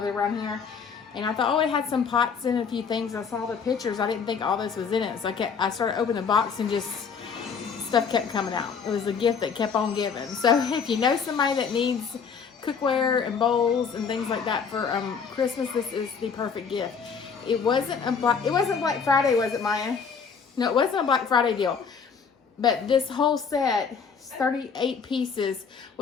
it around here. And I thought, oh, it had some pots and a few things. I saw the pictures. I didn't think all this was in it. So I started opening the box and just stuff kept coming out. It was a gift that kept on giving. So if you know somebody that needs cookware and bowls and things like that for Christmas, this is the perfect gift. It wasn't Black Friday, was it, Maya? No, it wasn't a Black Friday deal. But this whole set, 38 pieces,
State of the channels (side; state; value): right; quieter; 6.1 dB